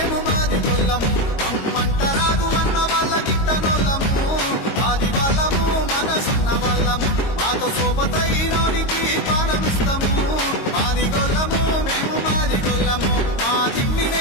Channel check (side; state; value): right; late; 22 ms